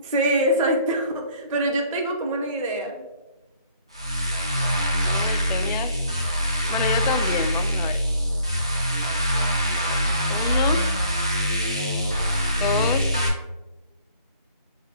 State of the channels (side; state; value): both; inverted; correlation -0.61